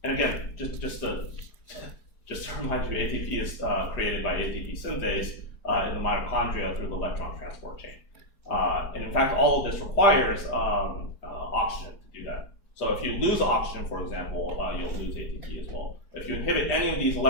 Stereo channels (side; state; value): right; late; 4.9 ms